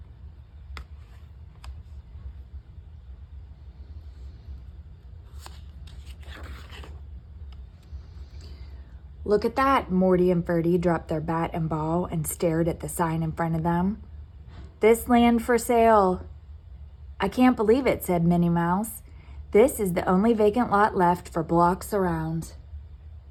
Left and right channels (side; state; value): both; identical; correlation 1.00